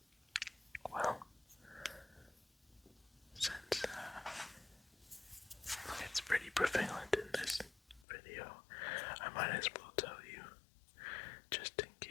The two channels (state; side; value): drops out; right; at 8.1 s